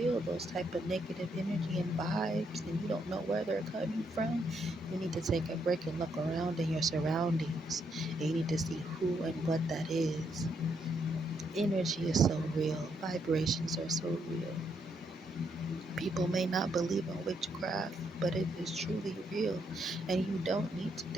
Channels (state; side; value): normal; both; correlation 0.76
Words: those type of negative energy and vibes, and you don't know where they're coming from, you need to take a break and look around in your surroundings, and you need to see who and what that is. Energy is so real. Vibrations are so real. People may not believe in witchcraft, but it is truly real. And you don't need to